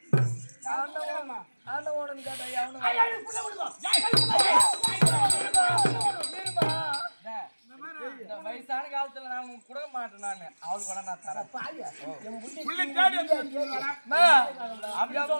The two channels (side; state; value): both; inverted; correlation -1.00